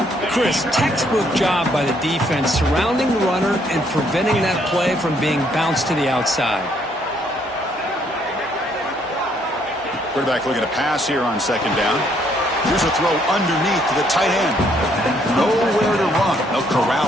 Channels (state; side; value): normal; both; correlation 0.69